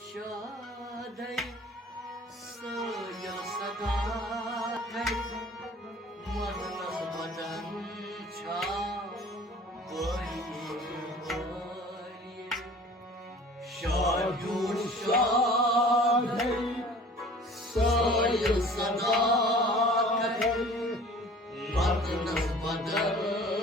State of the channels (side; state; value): both; normal; correlation 0.47